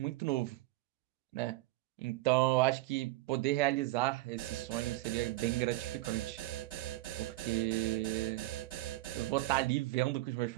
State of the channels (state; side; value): quieter; left; 18.3 dB